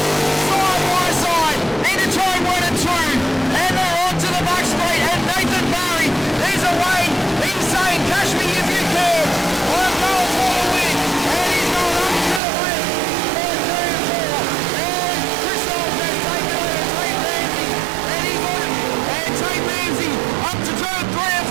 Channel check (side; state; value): left; drops out; at 12.4 s